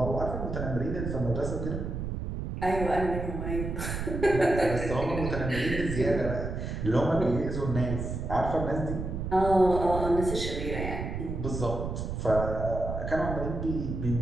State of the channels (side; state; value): right; noise; rumble, 4 dB below the sound